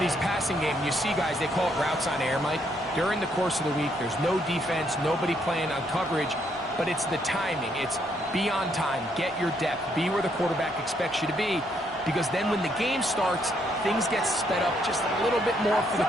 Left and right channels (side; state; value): both; normal; correlation 0.73